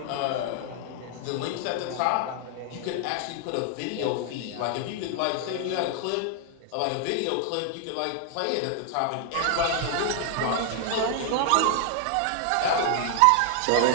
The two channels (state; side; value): different; both; correlation 0.00